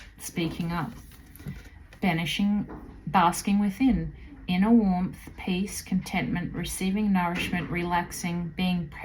speaking up. Banishing, basking within, inner warmth, peace, contentment, receiving nourishment, relaxing, being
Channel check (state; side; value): identical; both; correlation 1.00